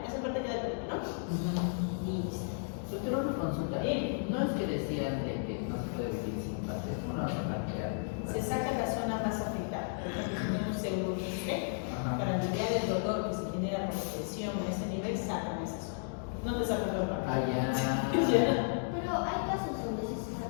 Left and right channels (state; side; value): silent; right; digital silence